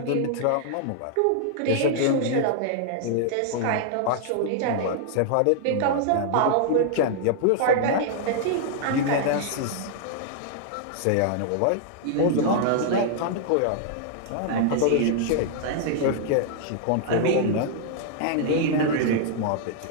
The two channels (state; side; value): different; both; correlation -0.01